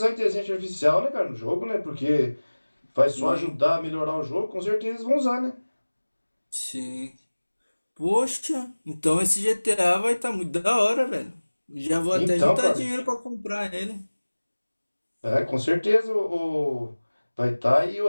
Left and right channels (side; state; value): both; inverted; correlation -1.00